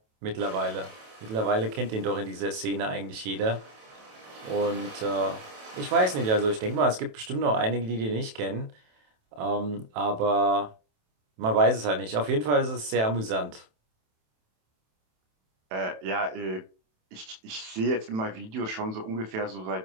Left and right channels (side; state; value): left; late; 27 ms